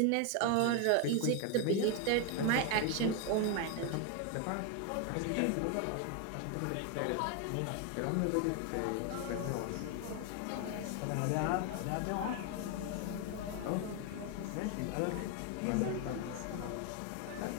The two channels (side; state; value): both; different; correlation 0.01